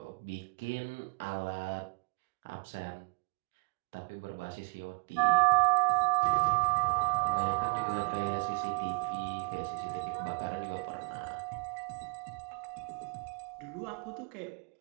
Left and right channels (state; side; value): quieter; left; 36.3 dB